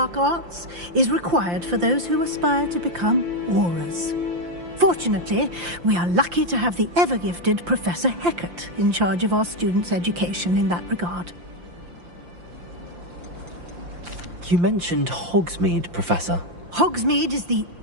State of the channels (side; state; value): left; late; 5.8 ms